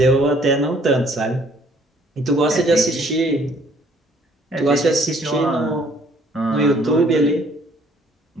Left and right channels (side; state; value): both; normal; correlation 0.61